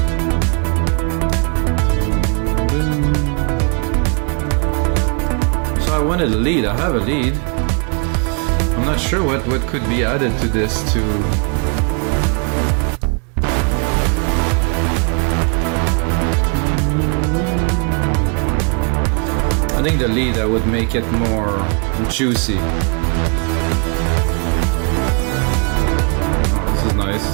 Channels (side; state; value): left; quieter; 37.9 dB